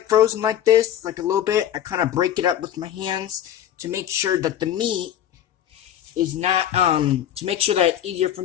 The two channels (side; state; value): right; quieter; 10.8 dB